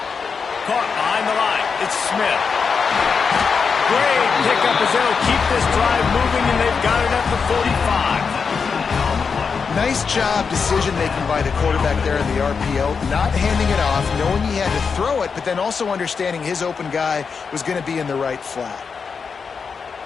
Caught behind the line. It's Smith. Great pickup as they'll keep this drive moving, and they've got it at the 45. Nice job decision-making by the quarterback there in the RPO, not handing it off, knowing he had to throw it, but then also understanding his open guy was going to be in the right flat.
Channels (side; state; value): right; quieter; 5.6 dB